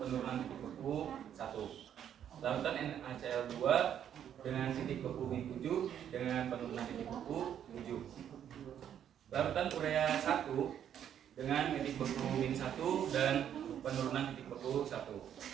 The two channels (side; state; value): left; quieter; 9.6 dB